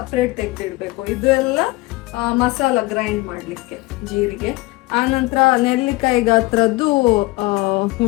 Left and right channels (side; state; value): right; quieter; 21.4 dB